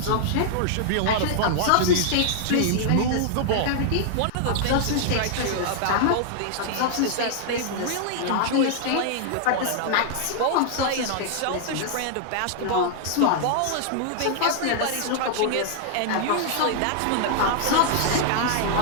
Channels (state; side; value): different; both; correlation -0.01